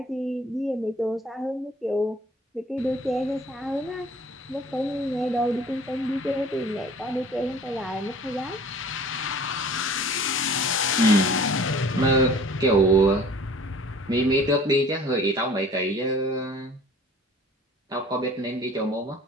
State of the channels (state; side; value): normal; both; correlation 0.48